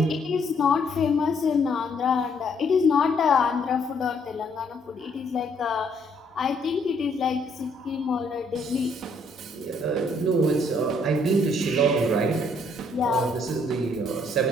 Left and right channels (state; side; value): normal; both; correlation 0.68